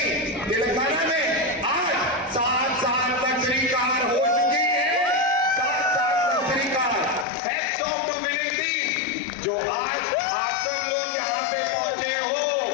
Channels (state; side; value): drops out; right; at 7.2 s